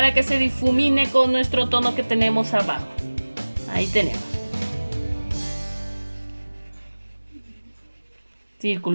que se difumine con nuestro tono que tenemos abajo. Ahí tenemos.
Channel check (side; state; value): both; inverted; correlation -1.00